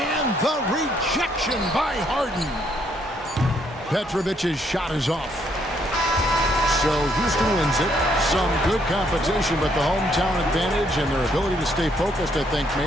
the rejection by Harden. Petrovic's shot is off. So Houston wins it. Some good competition, but the hometown advantage and their ability to stay focused, I think,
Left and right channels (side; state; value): both; normal; correlation 0.71